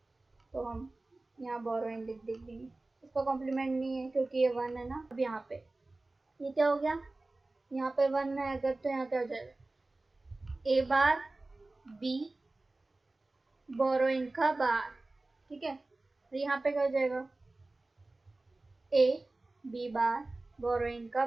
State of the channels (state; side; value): quieter; left; 3.0 dB